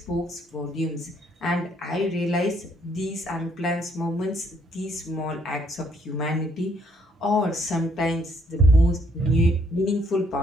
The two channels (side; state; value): both; normal; correlation 0.68